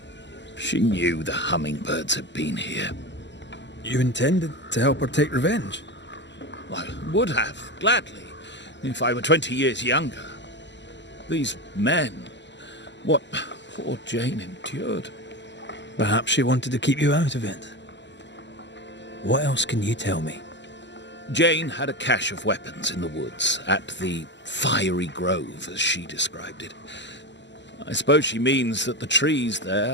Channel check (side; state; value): right; late; 0.52 ms